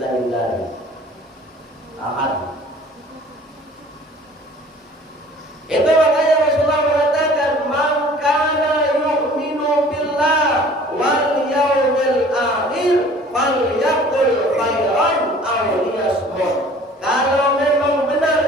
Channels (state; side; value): normal; both; correlation 0.49